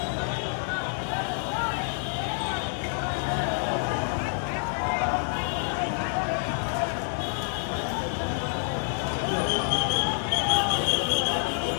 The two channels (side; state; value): right; silent; 60 dB below the other